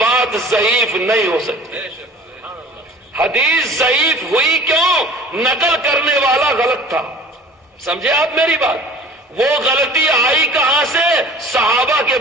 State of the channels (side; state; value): both; normal; correlation 0.44